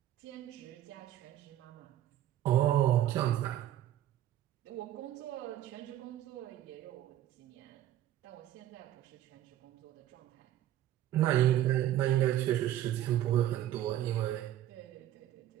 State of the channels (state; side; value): quieter; left; 12.5 dB